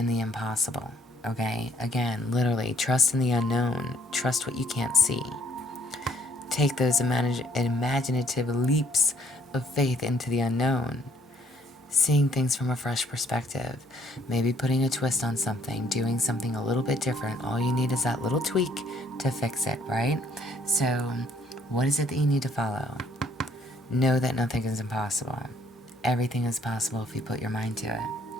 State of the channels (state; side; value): normal; both; correlation 0.64